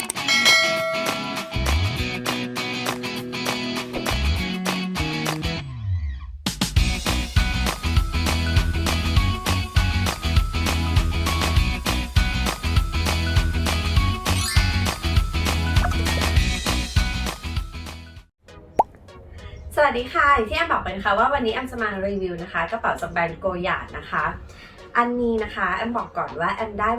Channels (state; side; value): identical; both; correlation 1.00